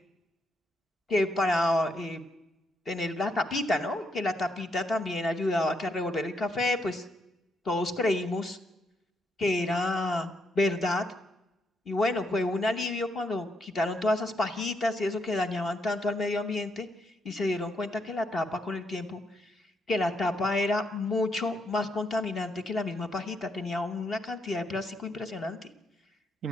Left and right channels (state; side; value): normal; both; correlation 0.77